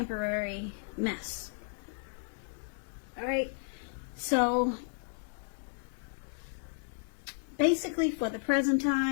mess. All right, so basically for the present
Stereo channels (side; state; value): right; silent; digital silence